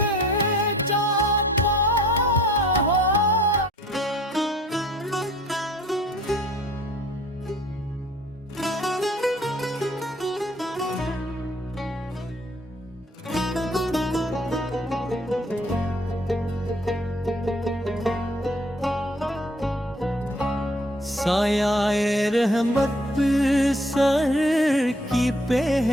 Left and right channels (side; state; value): both; normal; correlation 0.56